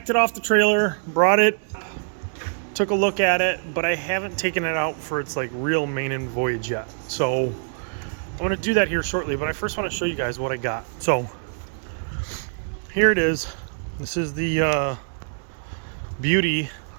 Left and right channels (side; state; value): left; silent; digital silence